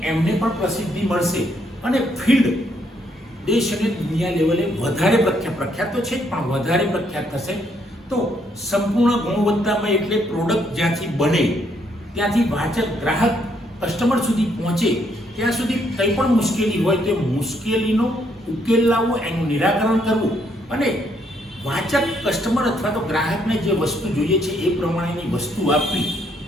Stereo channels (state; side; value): normal; both; correlation 0.72